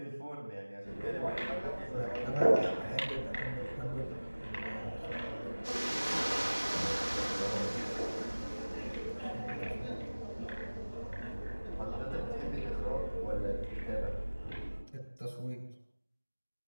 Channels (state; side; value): inverted; both; correlation -1.00